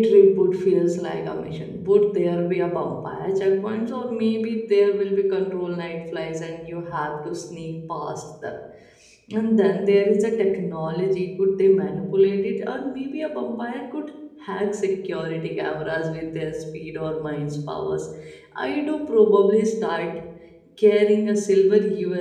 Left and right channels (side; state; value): both; identical; correlation 1.00